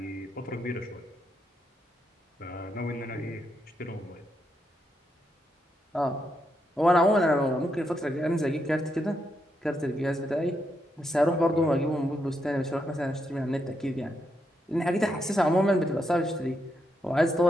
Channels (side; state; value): both; normal; correlation 0.80